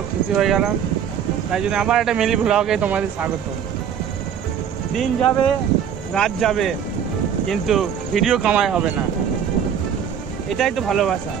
খুশি হয়ে গেলাম। তাই জন্য আবার একটা মিনি ব্লগে তোমাদের স্বাগত। দিন যাবে, রাত যাবে, কিন্তু ভিডিও কামাই হবে না। এটাই তো ভালোবাসা।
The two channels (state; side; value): quieter; left; 8.3 dB